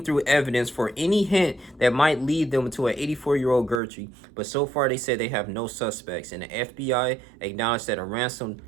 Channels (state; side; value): drops out; left; at 3.8 s